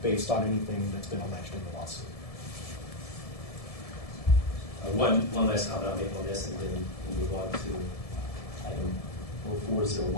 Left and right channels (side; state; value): right; late; 1.7 ms